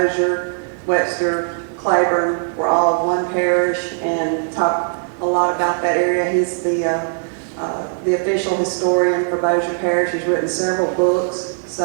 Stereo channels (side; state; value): left; silent; digital silence